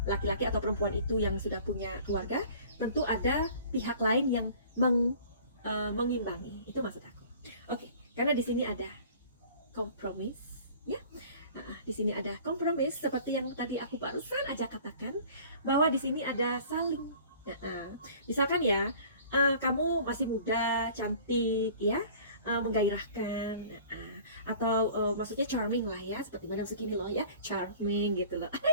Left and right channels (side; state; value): both; inverted; correlation -0.48